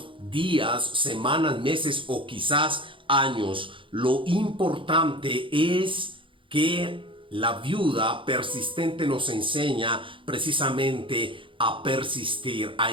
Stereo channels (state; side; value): late; left; 0.25 ms